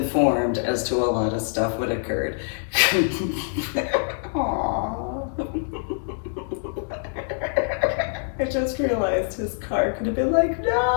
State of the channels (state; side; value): silent; right; digital silence